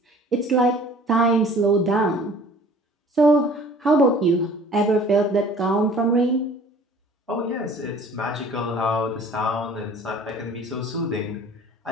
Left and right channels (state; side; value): normal; both; correlation 0.49